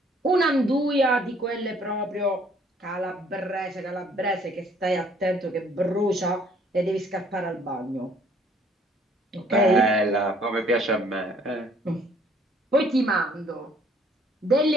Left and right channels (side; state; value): both; normal; correlation 0.60